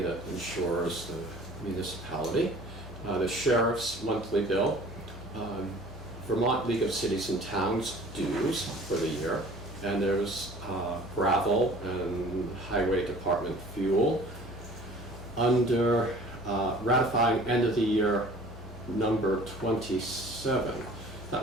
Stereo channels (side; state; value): both; normal; correlation 0.48